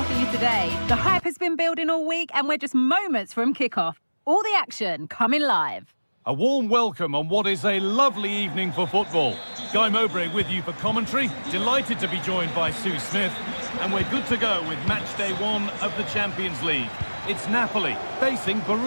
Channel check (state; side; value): inverted; both; correlation -1.00